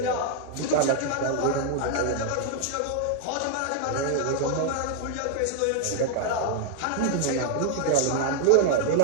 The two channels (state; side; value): different; both; correlation -0.01